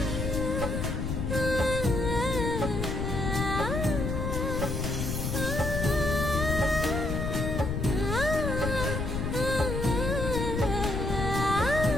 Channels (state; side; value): noise; left; rumble, 2 dB below the sound